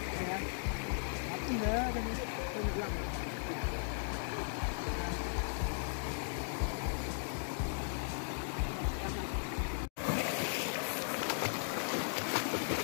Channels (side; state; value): right; silent; digital silence